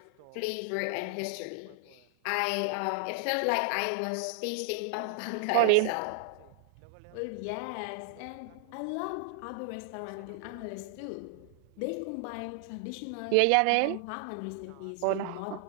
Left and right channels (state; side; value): different; both; correlation -0.01